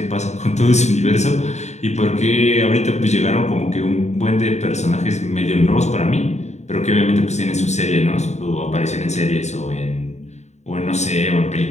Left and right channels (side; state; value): right; late; 0.33 ms